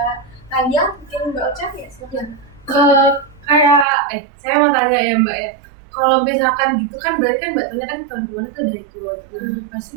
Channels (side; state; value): left; drops out; at 3.9 s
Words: Talia, mungkin Mbak Ocha ya silakan. Saya mau tanya ya Mbak ya, kalau misalkan gitu kan berarti kan Mbak Talia kan tahun kemarin tuh udah ikut, pasti